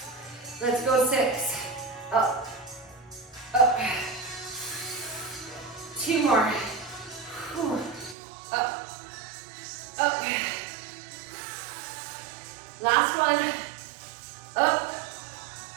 Let's go 6, up, up. 2 more. Whew. Up, up. Last one. Up,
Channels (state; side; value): drops out; left; at 8.2 s